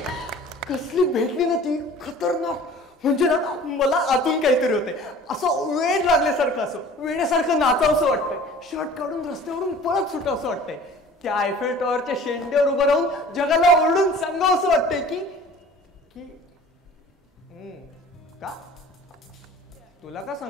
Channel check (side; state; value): both; normal; correlation 0.46